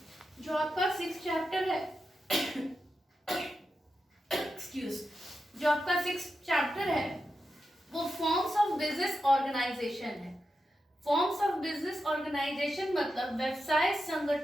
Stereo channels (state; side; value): normal; both; correlation 0.89